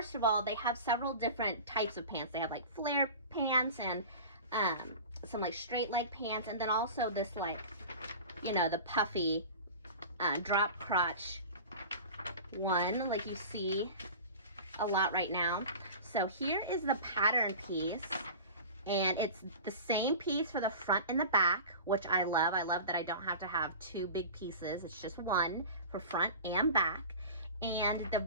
of all, they have several different types of pants. They have like flare pants and some like straight leg pants, and then also this the puffy drop crotch one, like you see a lot right now. So here is the pattern piece, and it's the same piece for the front and the back, which I love. I love that I don't have to have two big pieces. It's just one for front and back.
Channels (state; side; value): inverted; both; correlation -0.35